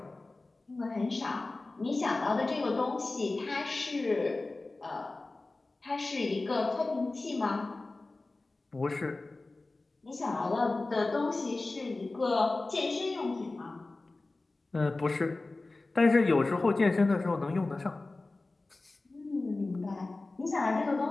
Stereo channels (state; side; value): quieter; right; 3.2 dB